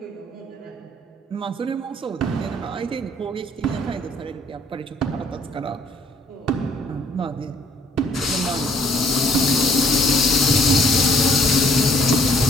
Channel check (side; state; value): both; normal; correlation 0.62